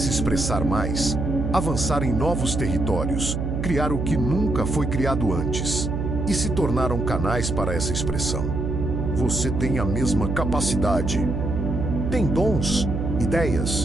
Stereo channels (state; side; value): noise; right; hum, 2 dB below the sound